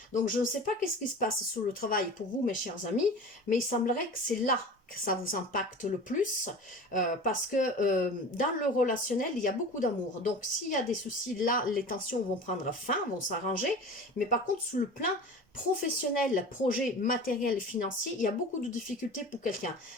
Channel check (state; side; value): normal; both; correlation 0.36